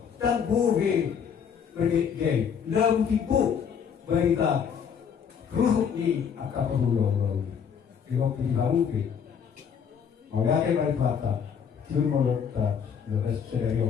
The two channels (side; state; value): right; quieter; 7.3 dB